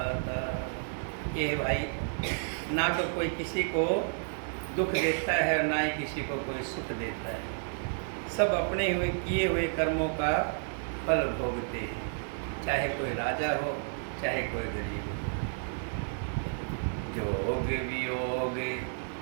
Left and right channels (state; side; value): silent; left; digital silence